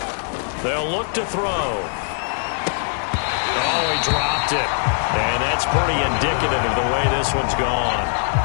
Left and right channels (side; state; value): right; silent; digital silence